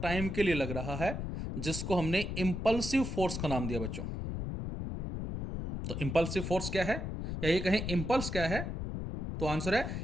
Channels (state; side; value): noise; left; rumble, 4 dB below the sound